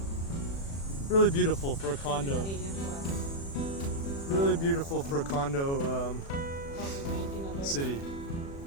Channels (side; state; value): right; late; 36 ms